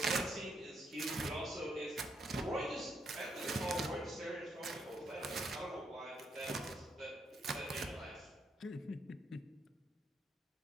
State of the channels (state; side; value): normal; both; correlation 0.76